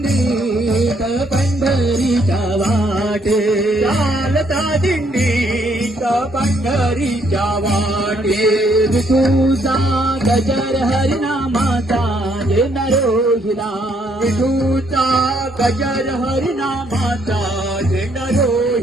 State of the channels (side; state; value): both; normal; correlation 0.70